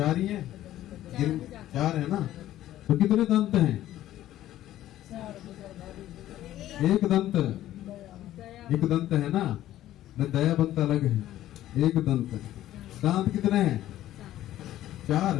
ही है, 4 है ना। तो कितने दंत हैं? एक दंत है ना, न दया बंत अलग है, एक दंत। दांत कितने हैं? 4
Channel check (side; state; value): right; quieter; 13.5 dB